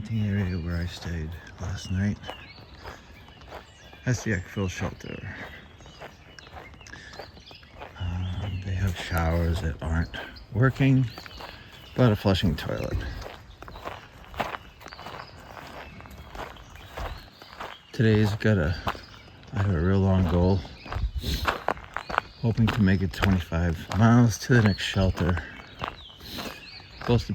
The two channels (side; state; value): both; identical; correlation 1.00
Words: area where I stayed last night. That's the Eckville shelter. They have showers that aren't working, but a flushing toilet. Today's I have a real long goal. Hoping to make it 25 miles to the next shelter. Both the